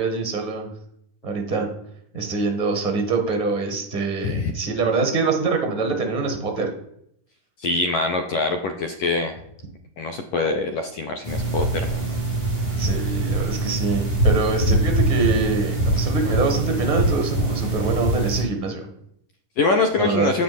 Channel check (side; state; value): right; late; 11 ms